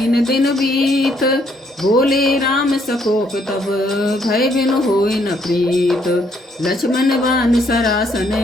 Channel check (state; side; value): normal; both; correlation 0.70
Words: दिन बीत। बोले राम सकोप तब, भय बिनु होय न प्रीत। लक्ष्मण बान सरासन